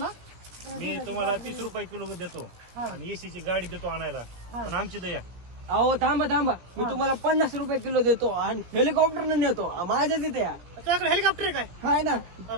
मी तुम्हाला 30 रुपये किलो देतो आणि एसीची गाडी देतो आणायला पण आमची दया अहो थांबा थांबा, मी तुम्हाला 50 रुपये किलो देतो आणि हेलिकॉप्टरने नेतो माझ्या तिथे या. त्याच्याकडे हेलिकॉप्टर आहे काय काय ना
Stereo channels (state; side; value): late; left; 17 ms